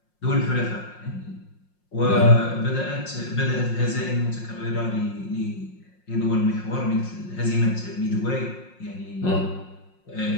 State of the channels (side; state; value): right; late; 5.6 ms